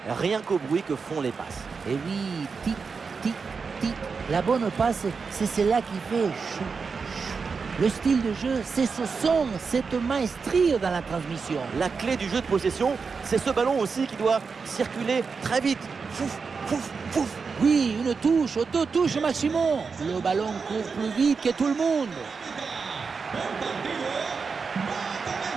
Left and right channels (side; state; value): left; quieter; 5.1 dB